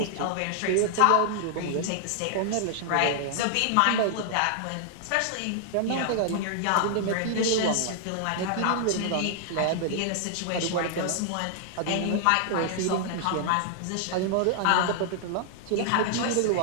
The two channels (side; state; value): both; different; correlation 0.00